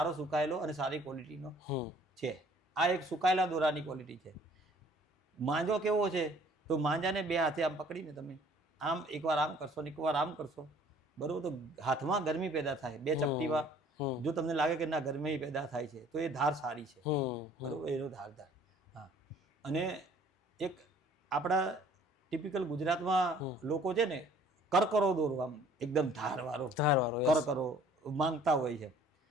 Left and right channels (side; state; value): both; normal; correlation 0.55